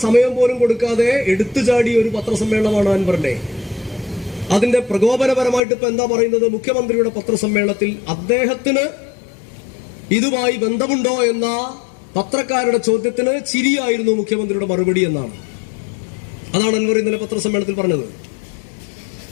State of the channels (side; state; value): right; drops out; at 5.6 s